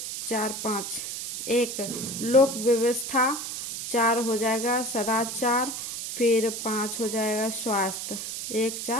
4, 5। 1 लोक व्यवस्था, 4 हो जाएगा सदाचार, फिर 5 हो जाएगा स्वास्थ्य। 1,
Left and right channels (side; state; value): right; noise; hiss, 6 dB below the sound